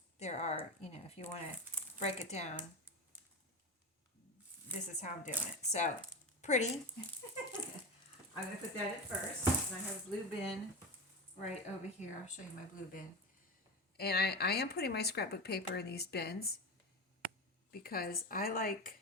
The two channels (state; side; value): normal; both; correlation 0.22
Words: there are, you know, if you want to break it down, this is how I'm doing it. So, pretty. I'm going to put that in first. And I have a blue bin right over here. I'll show you my blue bin. And I am putting my scrapbook paper in these bins because I like